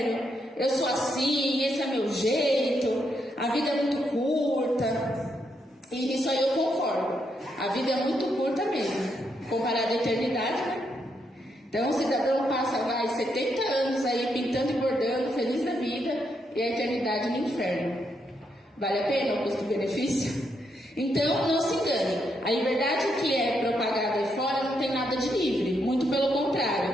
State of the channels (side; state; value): both; normal; correlation 0.79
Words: eu sou assim, esse é meu jeito, a vida é muito curta. E nisso aí eu concordo, a vida é muito curta mesmo, comparada à eternidade, né? Então o cidadão passa, 70 anos aí pintando e bordando, feliz da vida, e a eternidade no inferno. Vale a pena o custo-benefício? Então, não se engane. A liberdade que é propagada aí fora não tem nada de livre. Muito pelo